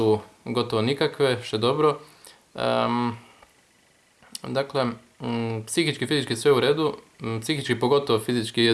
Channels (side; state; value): both; identical; correlation 1.00